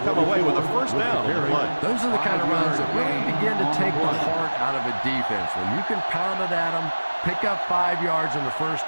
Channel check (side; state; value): both; inverted; correlation -1.00